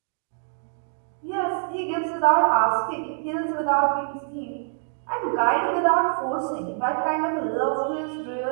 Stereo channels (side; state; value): left; silent; digital silence